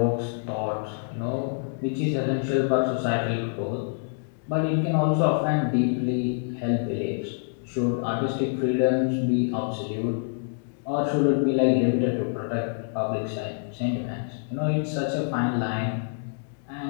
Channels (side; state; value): right; silent; digital silence